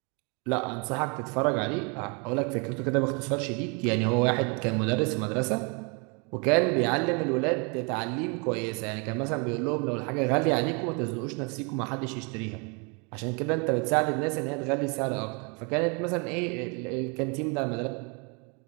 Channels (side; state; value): left; quieter; 33.4 dB